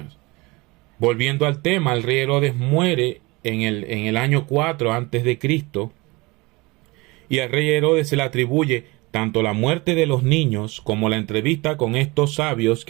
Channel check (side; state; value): left; quieter; 24.0 dB